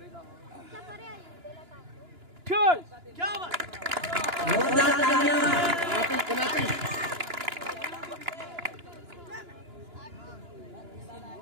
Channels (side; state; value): left; late; 2.9 ms